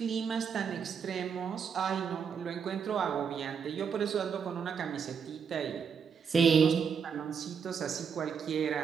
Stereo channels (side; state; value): left; quieter; 6.6 dB